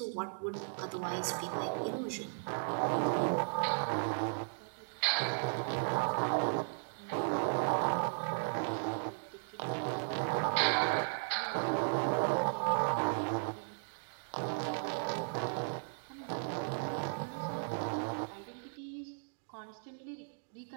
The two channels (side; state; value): left; silent; digital silence